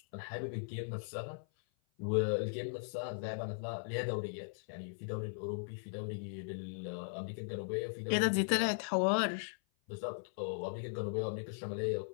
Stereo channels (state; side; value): silent; right; 52 dB below the other